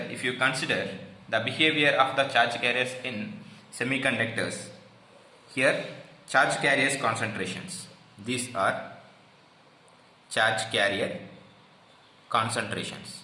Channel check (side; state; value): both; identical; correlation 1.00